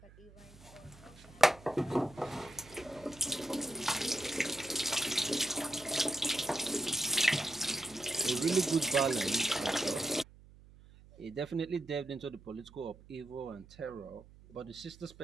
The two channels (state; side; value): noise; right; hum, 22 dB below the sound